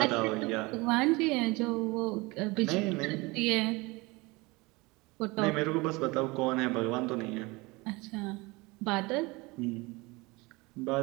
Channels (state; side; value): quieter; left; 24.3 dB